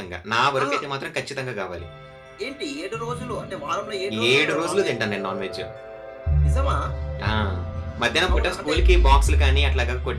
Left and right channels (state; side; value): identical; both; correlation 1.00